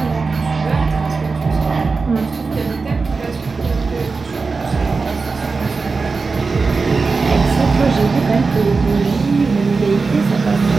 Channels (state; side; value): quieter; left; 4.3 dB